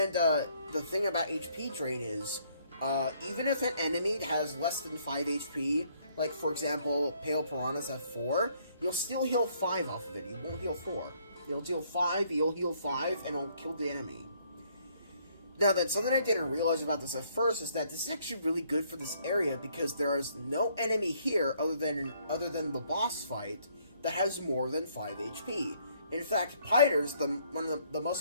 thing about HP Drain is, even if an enemy has less than 5 HP, like for example, Pale Piranhas have 4, you'll still heal 5 off of it. You won't heal 4. You'll deal 5, you'll heal 5, and it'll kill the enemy. Now then, something I didn't realize about this at first is that this is actually really good for this area because there is no enemy here other than the boss fight that has more than 5 HP. In fact, Piters, one of the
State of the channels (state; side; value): inverted; both; correlation -0.67